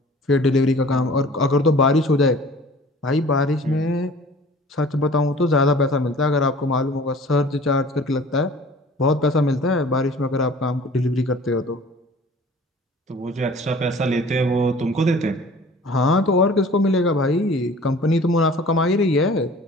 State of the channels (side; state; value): both; normal; correlation 0.47